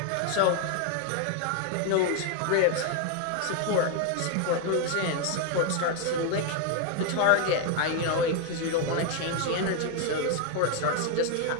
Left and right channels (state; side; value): different; both; correlation 0.01